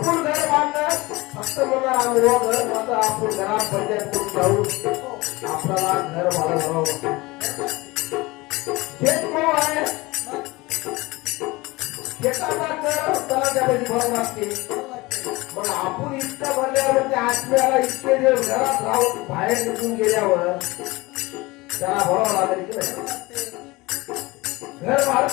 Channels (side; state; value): right; quieter; 22.0 dB